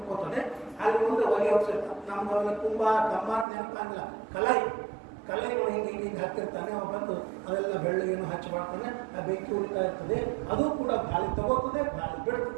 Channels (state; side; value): drops out; left; at 3.5 s